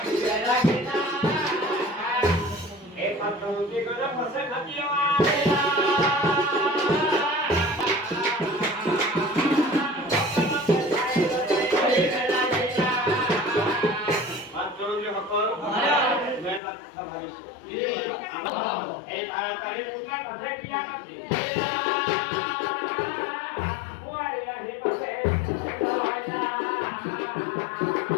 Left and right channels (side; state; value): right; drops out; at 16.6 s